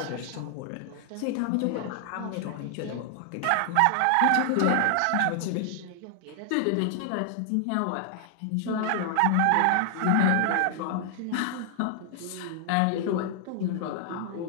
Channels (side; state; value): both; different; correlation 0.00